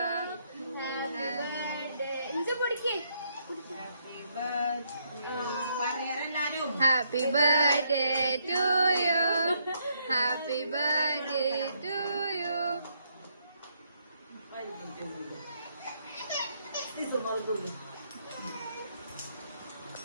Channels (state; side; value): inverted; both; correlation -0.74